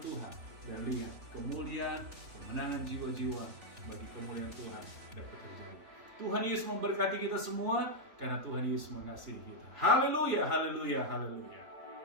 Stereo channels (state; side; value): late; left; 3.4 ms